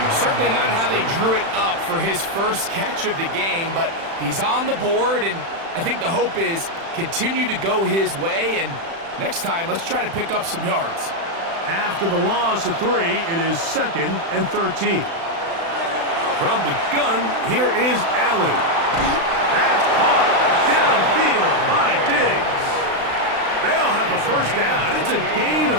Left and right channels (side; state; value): left; late; 36 ms